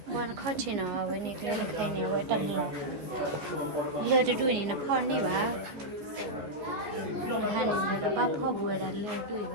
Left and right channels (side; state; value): left; late; 14 ms